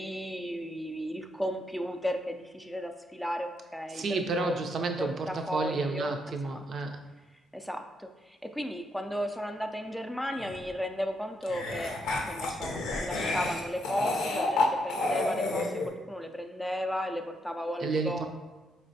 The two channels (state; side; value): normal; both; correlation 0.77